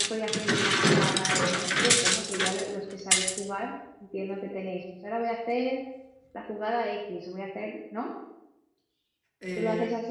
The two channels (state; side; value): identical; both; correlation 1.00